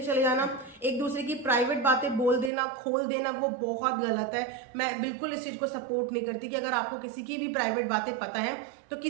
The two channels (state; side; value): drops out; left; at 2.5 s